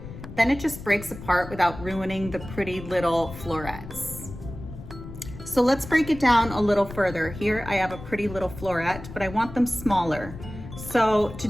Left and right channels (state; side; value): noise; left; rumble, 12 dB below the sound